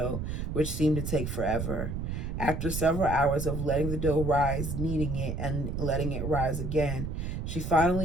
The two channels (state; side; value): noise; right; rumble, 3 dB below the sound